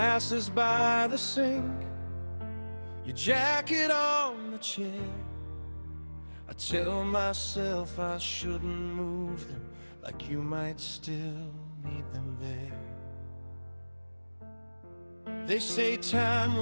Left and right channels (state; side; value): inverted; both; correlation -1.00